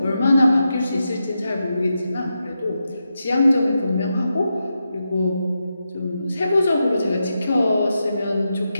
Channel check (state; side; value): inverted; both; correlation -0.87